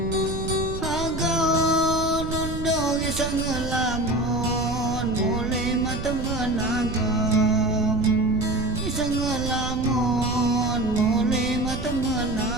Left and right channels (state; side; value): noise; right; rumble, 7 dB below the sound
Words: isang lamon mulai mata menagam isang lamon mulai mata